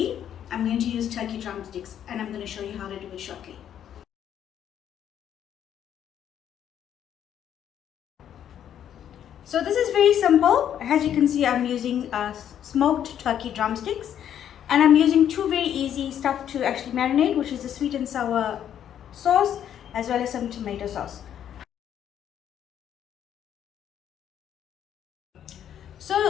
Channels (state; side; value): quieter; right; 9.9 dB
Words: I'm going to use turkey drumsticks, and I'm going to show you how to do it shortly. So this is very simple. As you can see, I'm using smoked turkey drumsticks, and I'm using two very easy stuff to actually marinate, which is the sweet and sour sauce as well as some tomato sauce.